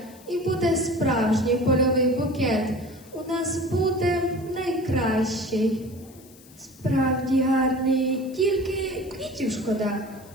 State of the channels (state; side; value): noise; left; hiss, 24 dB below the sound